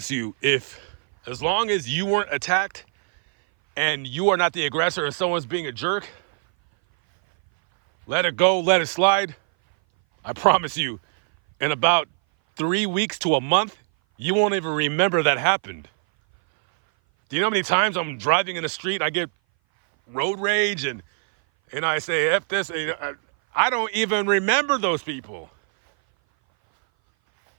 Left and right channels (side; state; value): left; silent; 59 dB below the other